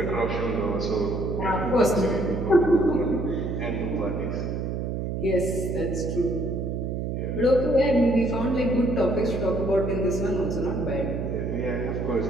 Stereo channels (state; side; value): noise; right; hum, 2 dB below the sound